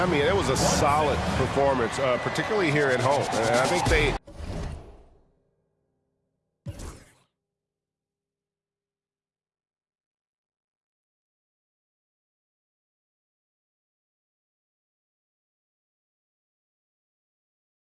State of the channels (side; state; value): both; identical; correlation 1.00